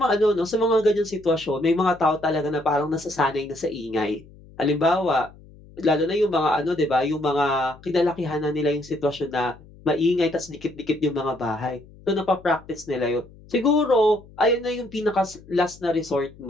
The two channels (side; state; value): left; noise; hum, 23 dB below the sound